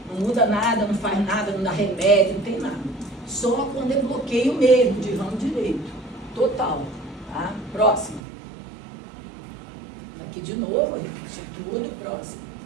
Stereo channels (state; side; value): drops out; left; at 8.2 s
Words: Não muda nada, não faz nada, não dá remédio, não tem nada. Só quando é bloqueio mesmo, de ramo direito, total. Tá? Próximo. Aqui de novo, repetir tudo, próximo.